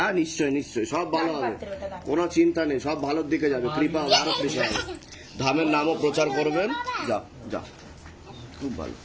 নিশ্চয়ই নিশ্চয়ই, সব ভালো হবে, কোনো চিন্তা নেই, সব ভালোর দিকে যাবে, কৃপা হবে, আরো কৃপা হবে। ধামের নামও প্রচার করবেন। যাও যাও, খুব ভালো,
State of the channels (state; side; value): identical; both; correlation 1.00